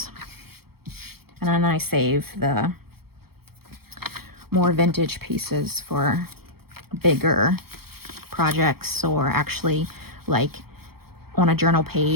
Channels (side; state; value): left; late; 0.95 ms